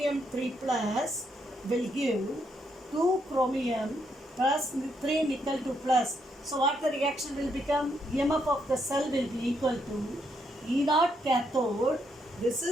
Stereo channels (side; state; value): both; normal; correlation 0.76